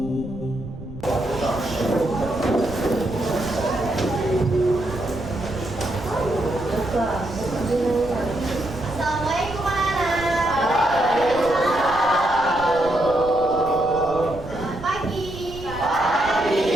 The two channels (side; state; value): right; noise; rumble, 14 dB below the sound